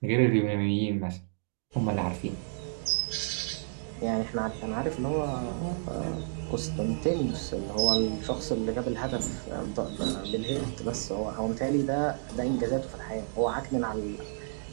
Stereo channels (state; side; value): silent; left; digital silence